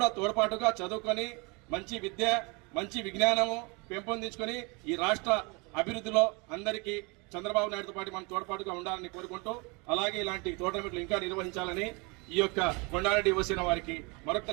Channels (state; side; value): quieter; left; 29.3 dB